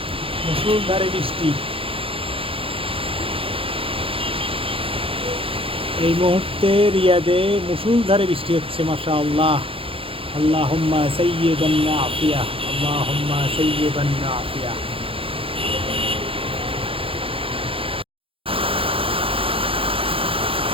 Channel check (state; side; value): late; left; 0.27 ms